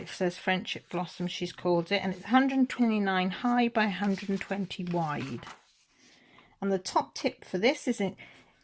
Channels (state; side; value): identical; both; correlation 1.00